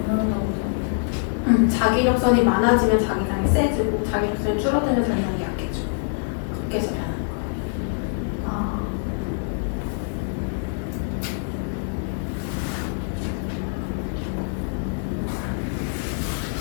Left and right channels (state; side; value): silent; right; digital silence